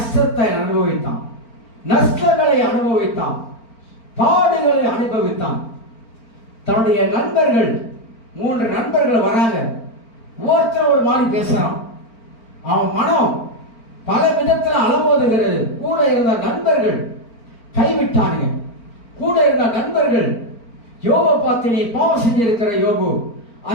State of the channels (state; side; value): late; right; 4.4 ms